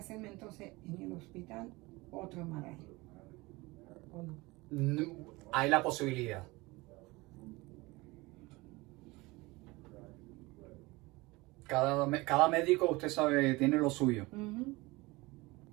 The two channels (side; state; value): left; quieter; 22.6 dB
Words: entonces en el hospital otro MRI? ¿O no? No, hay la posibilidad. Cada médico, usted sabe, tiene lo suyo.